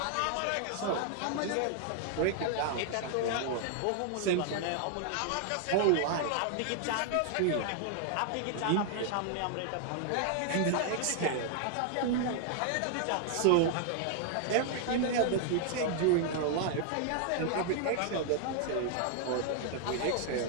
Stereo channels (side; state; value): both; different; correlation 0.00